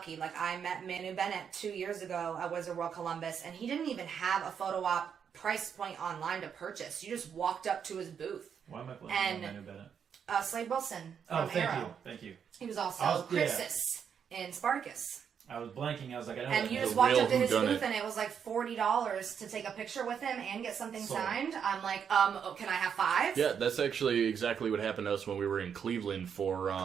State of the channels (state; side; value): quieter; left; 7.5 dB